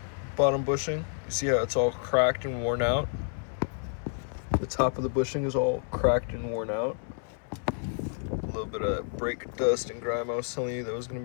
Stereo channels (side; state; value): right; silent; 58 dB below the other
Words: bottom bushing? You see how it's all cracked and worn out? The top of the bushing is all cracked and worn out. A little bit of brake dust and grime I was telling you that was gonna